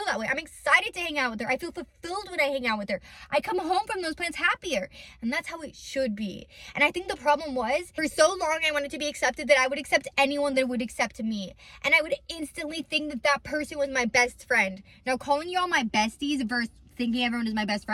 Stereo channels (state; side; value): identical; both; correlation 1.00